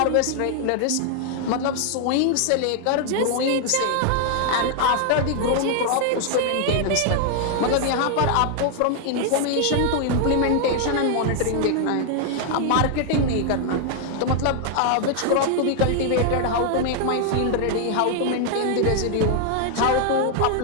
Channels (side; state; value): both; different; correlation 0.00